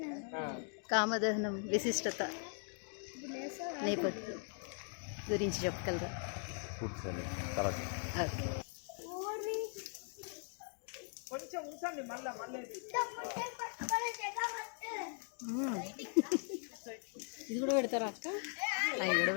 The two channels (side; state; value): right; silent; 51 dB below the other